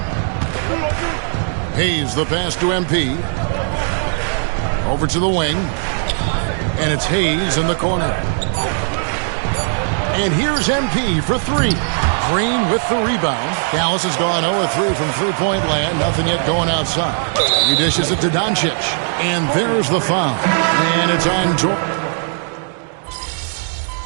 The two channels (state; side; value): silent; left; 60 dB below the other